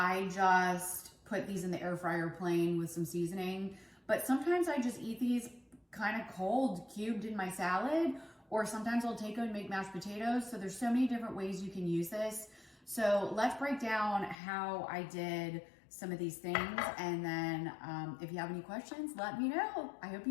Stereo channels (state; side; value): drops out; right; at 14.4 s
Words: just put these in the air fryer plain with some seasoning. But sometimes I just eat these kind of cold, cubed in my salad, or sometimes I'll take them and make mashed potatoes. So there's so many different ways you can use this. So let's break down how I did some of these things. And then if you have any questions, let me know. I hope